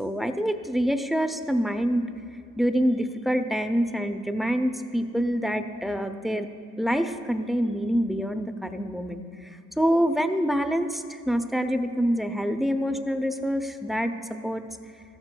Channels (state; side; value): normal; both; correlation 0.90